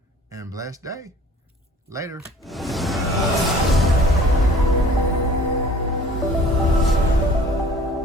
and blessed day. Later.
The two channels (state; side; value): normal; both; correlation 0.49